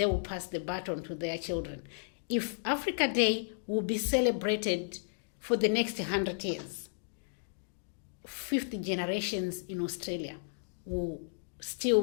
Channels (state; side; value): silent; right; digital silence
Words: will pass the baton to their children. If Africa Day will be celebrated for the next 100 years, 50 generations in Australia will